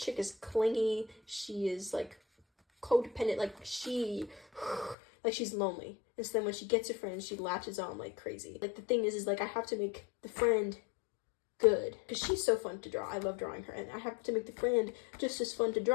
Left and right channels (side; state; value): right; drops out; at 5.0 s